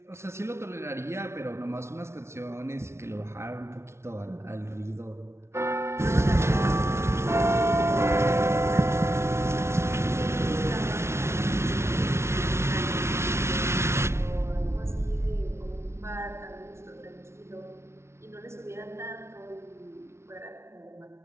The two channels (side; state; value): left; late; 0.13 ms